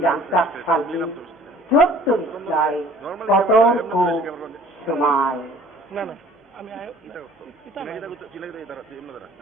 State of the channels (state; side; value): normal; both; correlation 0.52